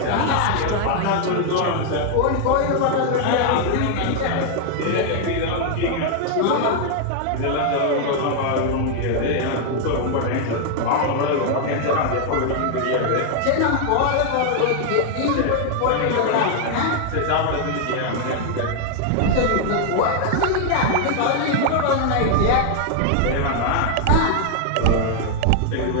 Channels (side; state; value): both; different; correlation 0.00